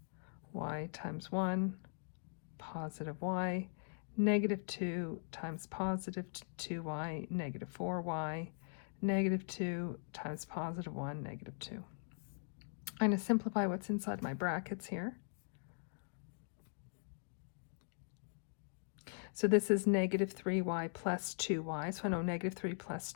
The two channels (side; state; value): right; silent; digital silence